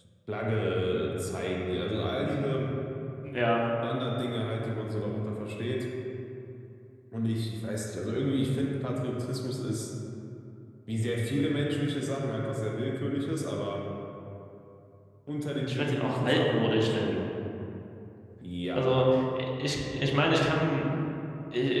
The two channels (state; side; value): identical; both; correlation 1.00